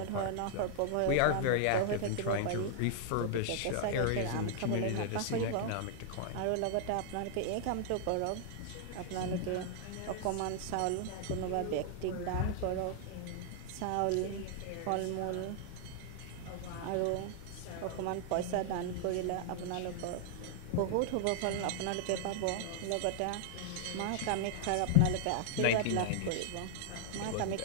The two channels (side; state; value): both; different; correlation -0.01